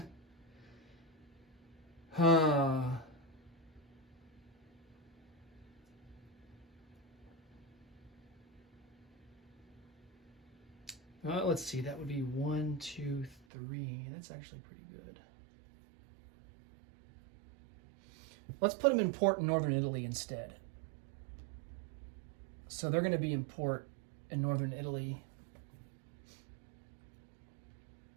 Well, let's see. That would be 1, 2, 3. That's actually pretty good. Let's put them in port in northern Italy instead. So they're going to be in port in northern Italy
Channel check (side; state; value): left; drops out; at 13.4 s